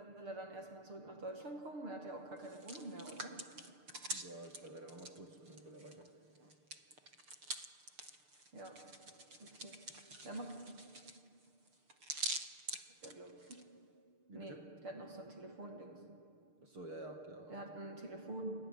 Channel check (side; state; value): left; late; 6.7 ms